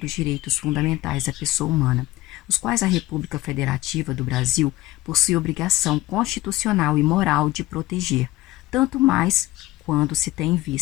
direitos fundamentais da pessoa humana, os quais a República Federativa do Brasil possui obrigação constitucional e moral de proteger, tanto mais quando se tem em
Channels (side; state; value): right; quieter; 17.6 dB